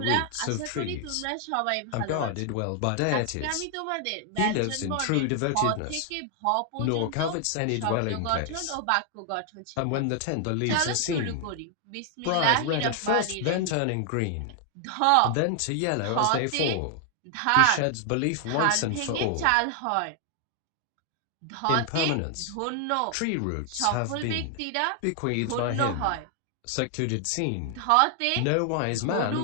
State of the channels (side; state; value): both; different; correlation 0.00